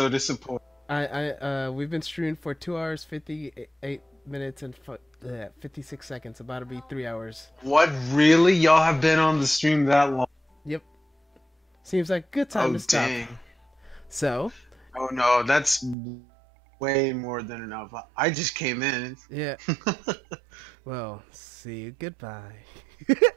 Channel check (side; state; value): left; drops out; at 16.0 s